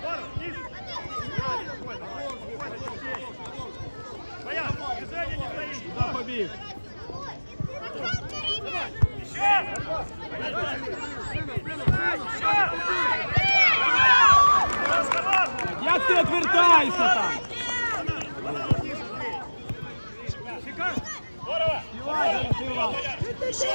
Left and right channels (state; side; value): inverted; both; correlation -1.00